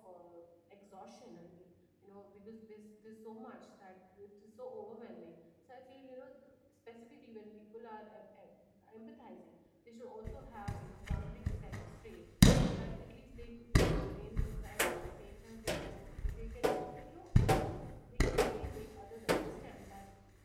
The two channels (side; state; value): both; identical; correlation 1.00